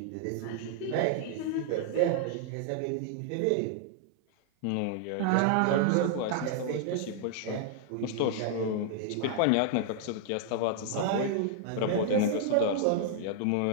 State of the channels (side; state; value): both; different; correlation -0.01